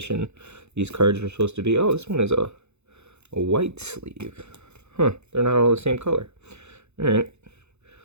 these cards are supposed to be. Oh, this one is a white sleeve. Huh, they're not all the same color. Alright.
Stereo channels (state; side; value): late; left; 0.81 ms